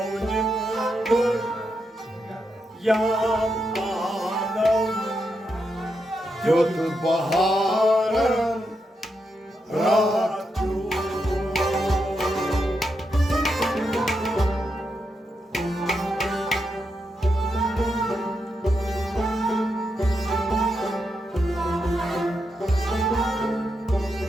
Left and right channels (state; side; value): normal; both; correlation 0.84